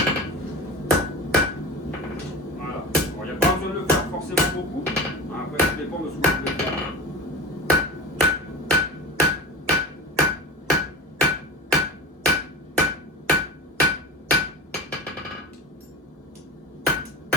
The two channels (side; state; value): both; normal; correlation 0.29